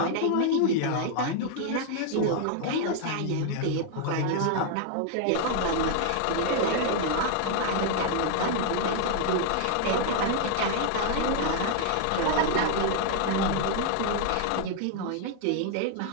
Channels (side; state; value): both; different; correlation 0.00